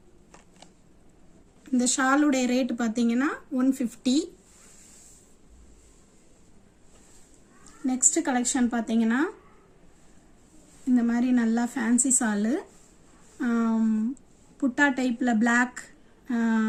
இந்த ஷாலுடைய ரேட் பாத்தீங்கன்னா 150. நெக்ஸ்ட் கலெக்ஷன் பாத்தீங்கன்னா இந்த மாதிரி நல்லா ஃபேன்சி ஷால் புட்டா டைப்ல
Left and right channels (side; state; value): both; identical; correlation 1.00